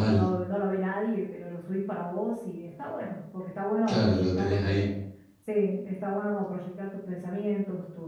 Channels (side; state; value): both; identical; correlation 1.00